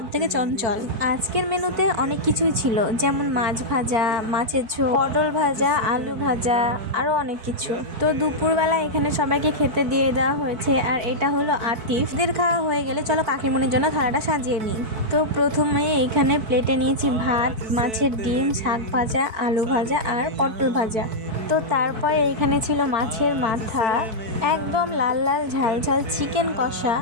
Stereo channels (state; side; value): late; left; 4.6 ms